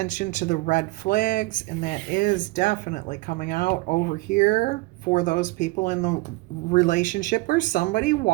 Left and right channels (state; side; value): quieter; left; 21.9 dB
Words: to the red flags, and that is definitely coming out over here for those people in the relationship where somebody